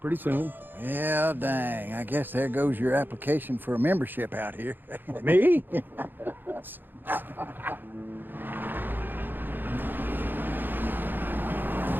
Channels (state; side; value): late; left; 0.093 ms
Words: pretty soon. Yeah, dang. I guess there goes your application for a membership out here. Me?